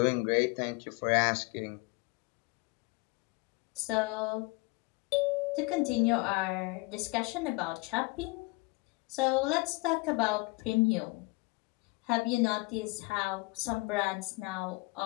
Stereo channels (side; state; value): right; quieter; 25.6 dB